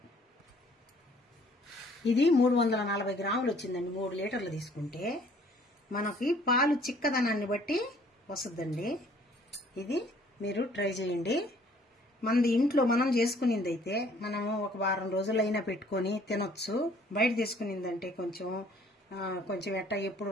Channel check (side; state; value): both; normal; correlation 0.58